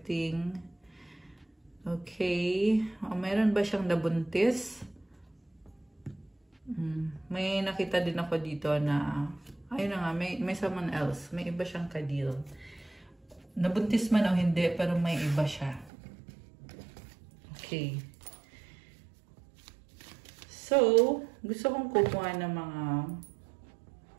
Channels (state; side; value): drops out; left; at 15.9 s